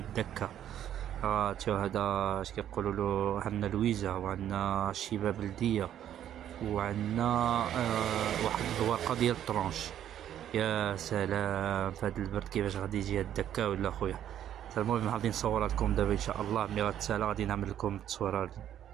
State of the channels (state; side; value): quieter; left; 10.7 dB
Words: شوف هذا اش كيقولوا له، عندنا لويزه وعندنا الشيبه بلديه، وعندنا واحد الورقه ديال الطرونش. يا سلام فهاد البرد كيفاش غادي يجي هاد الدكا ولا خويا. المهم غادي نصورها لكم دابا ان شاء الله. ملي غتسالى غادي نعمل لكم التصويره